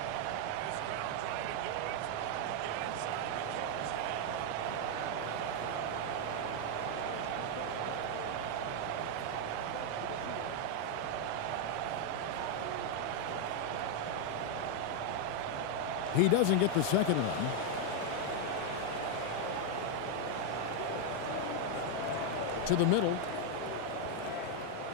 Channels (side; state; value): both; different; correlation 0.00